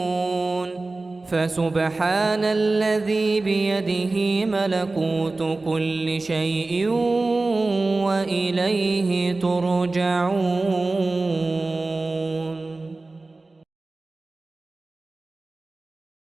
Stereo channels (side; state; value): left; quieter; 3.3 dB